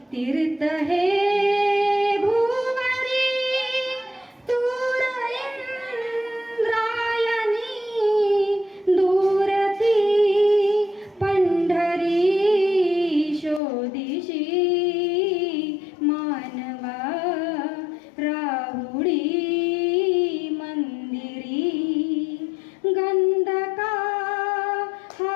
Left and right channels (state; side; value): drops out; right; at 13.6 s